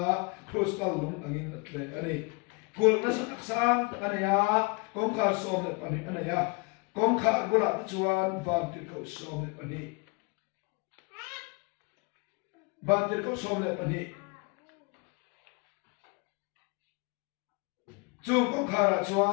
crystal lung angin tle ani kul na sa taksang kanaya kongkar som le pani anaya kongkar gula chuan van tir ko som le pani van tir ko som le pani chu kongkar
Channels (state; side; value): quieter; right; 30.5 dB